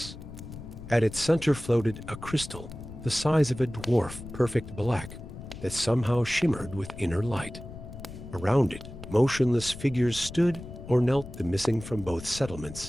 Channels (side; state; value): left; noise; rumble, 12 dB below the sound